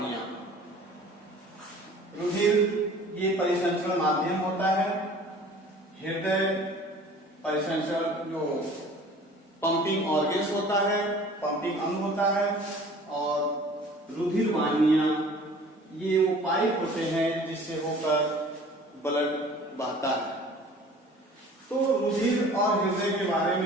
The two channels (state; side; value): normal; both; correlation 0.47